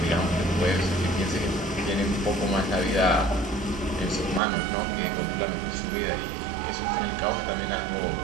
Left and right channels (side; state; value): left; drops out; at 4.4 s